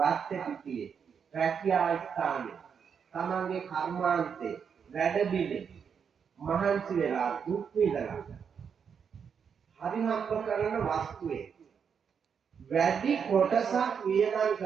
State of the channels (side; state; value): left; quieter; 6.9 dB